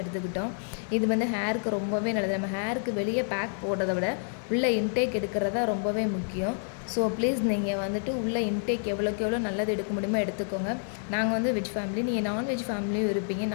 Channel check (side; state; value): right; silent; digital silence